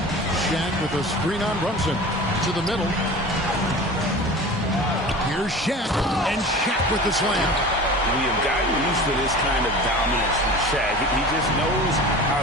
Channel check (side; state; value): both; normal; correlation 0.37